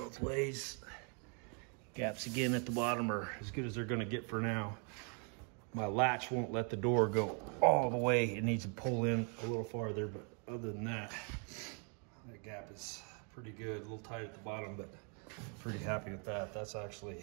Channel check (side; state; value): left; quieter; 38.6 dB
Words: ways. Gaps again at the bottom are as good as they're gonna get for now. My latch won't let the door go all the way. It needs to pull in a little farther, but other than that, that gap is pretty good. A little tight at the bottom, but pretty happy with that. That's actually